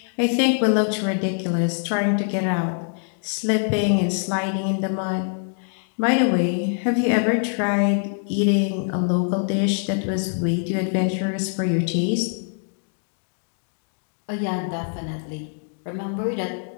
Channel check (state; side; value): silent; right; 60 dB below the other